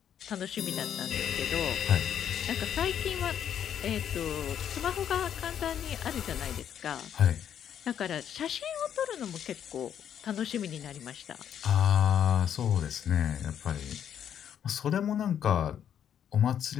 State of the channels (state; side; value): quieter; right; 9.3 dB